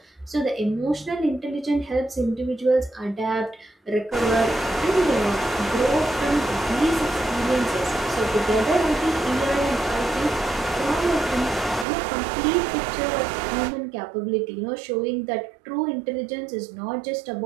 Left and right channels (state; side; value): drops out; left; at 11.9 s